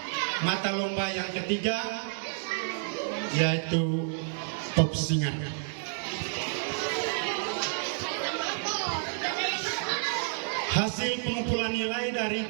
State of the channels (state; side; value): silent; left; 58 dB below the other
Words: mata lomba yang ketiga, yaitu pop singer. Hasil pengumpulan nilai